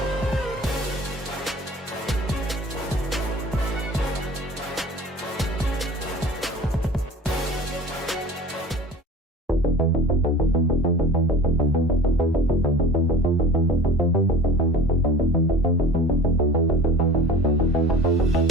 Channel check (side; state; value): both; normal; correlation 0.41